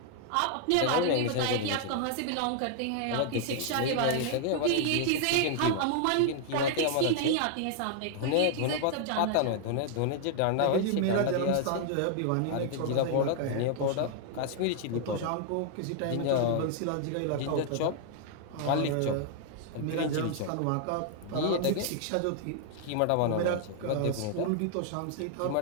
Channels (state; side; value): different; both; correlation 0.00